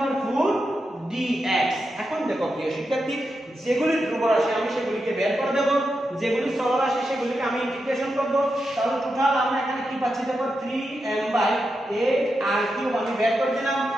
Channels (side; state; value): both; normal; correlation 0.87